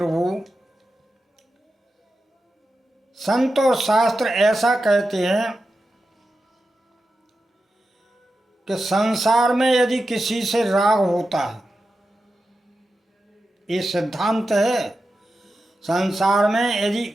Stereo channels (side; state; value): both; normal; correlation 0.91